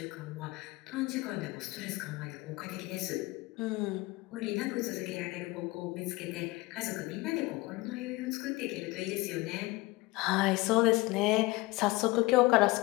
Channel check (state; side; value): quieter; right; 21.7 dB